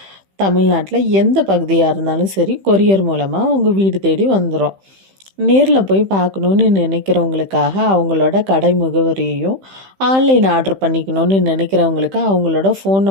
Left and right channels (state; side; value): late; left; 15 ms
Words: தமிழ்நாட்டில் எந்த பகுதியாக இருந்தாலும் சரி, கொரியர் மூலமாக உங்கள் வீடு தேடி வந்துடும். நேரில் போய் பார்க்கணுன்னு நினைக்கிறவங்களுக்காக அவங்களோட கடை முகவரியையும், ஆன்லைன் ஆர்டர் பண்ணிக்கணும்னு நினைக்கிறவங்களுக்கு அவங்களோட ஃபோன்